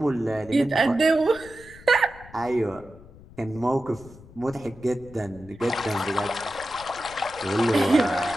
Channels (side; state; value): left; noise; rumble, 20 dB below the sound